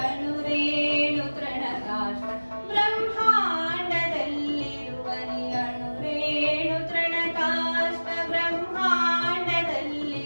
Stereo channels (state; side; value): inverted; both; correlation -1.00